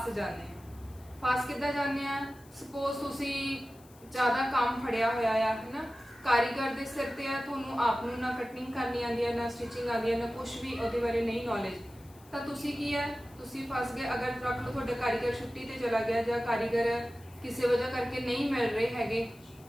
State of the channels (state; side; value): noise; left; hiss, 26 dB below the sound